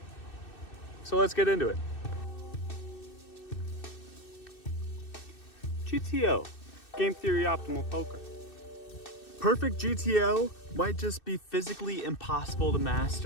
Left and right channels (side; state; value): right; late; 2.6 ms